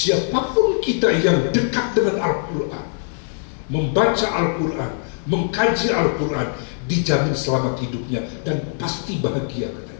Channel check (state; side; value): silent; right; digital silence